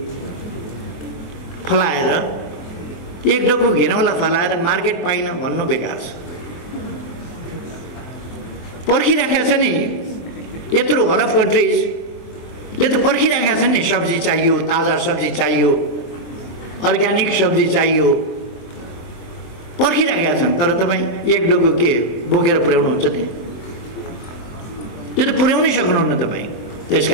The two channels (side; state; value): right; late; 23 ms